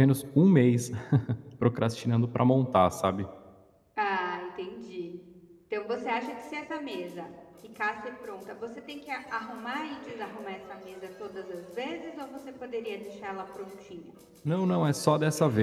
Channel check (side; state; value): both; identical; correlation 1.00